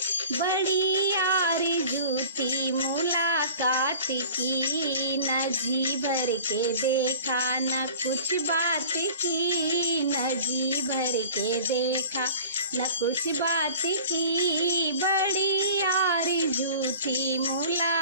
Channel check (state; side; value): inverted; both; correlation -0.43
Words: बड़ी आरज़ू थी मुलाकात की। न जी भर के देखा न कुछ बात की, न जी भर के देखा न कुछ बात की, बड़ी आरज़ू थी